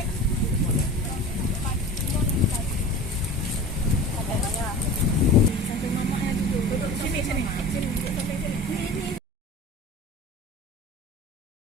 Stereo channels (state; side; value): normal; both; correlation 0.36